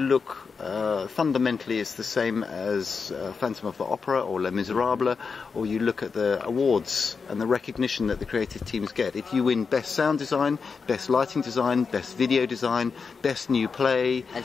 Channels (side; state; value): right; quieter; 5.3 dB